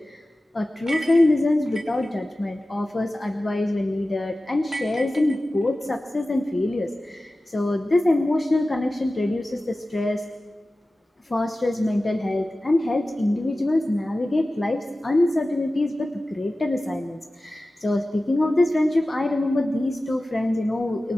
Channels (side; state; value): both; normal; correlation 0.96